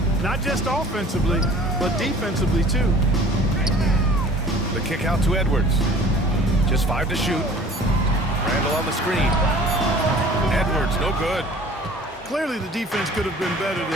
not just offensively, but defensively, too. The kick out to Edwards. Just 5 to shoot. Randall on the screen. Edwards, no good. Clearly, the defense could have been better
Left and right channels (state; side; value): normal; both; correlation 0.48